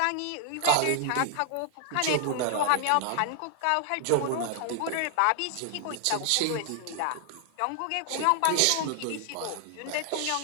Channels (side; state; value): both; different; correlation 0.00